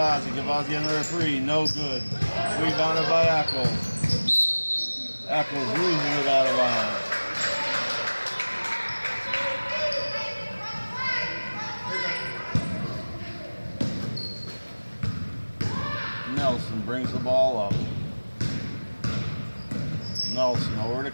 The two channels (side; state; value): both; inverted; correlation -1.00